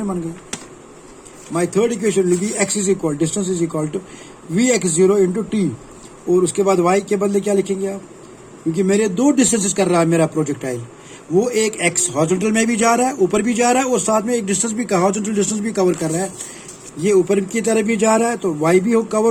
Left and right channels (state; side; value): identical; both; correlation 1.00